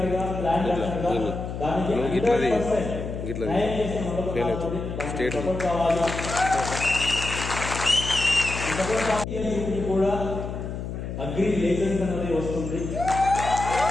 గా, ప్లాన్ డాక్టర్ గా దానికి 100% కావాలి. కూడా అగ్రి లైసెన్స్ అనేది వస్తుంది.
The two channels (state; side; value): noise; left; hum, 6 dB below the sound